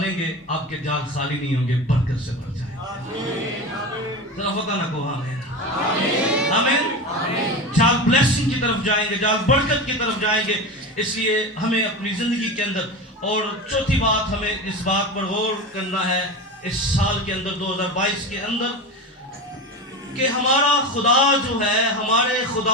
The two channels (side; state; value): both; normal; correlation 0.25